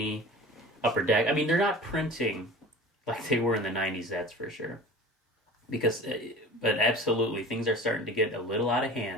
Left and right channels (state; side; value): normal; both; correlation 0.39